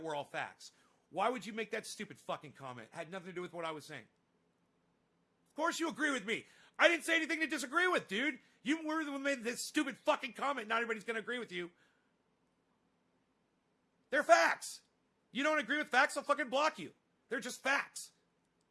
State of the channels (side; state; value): both; identical; correlation 1.00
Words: were all facts. Why would you make that stupid fucking comment? It had nothing to do with what I was saying. Of course you agree with me. I didn't say anything to disagree with, dude. You were the one who made this stupid fucking comment. Not everybody's going to agree with you. They're facts. You don't agree with facts, I'll fucking block you. They're just facts.